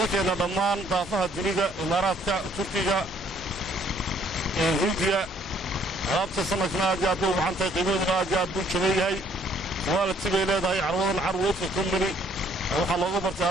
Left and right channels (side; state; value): both; normal; correlation 0.63